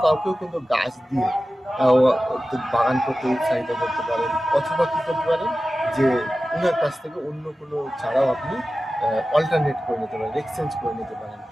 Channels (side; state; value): both; normal; correlation 0.95